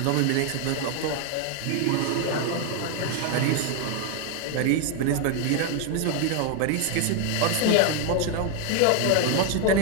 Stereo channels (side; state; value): both; different; correlation 0.01